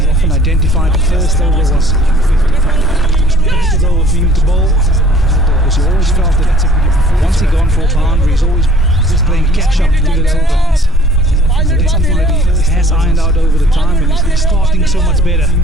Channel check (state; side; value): normal; both; correlation 0.53